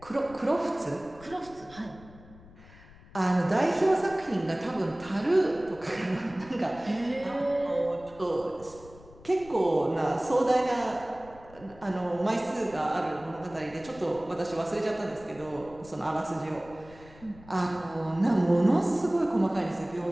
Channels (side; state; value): left; noise; rumble, 21 dB below the sound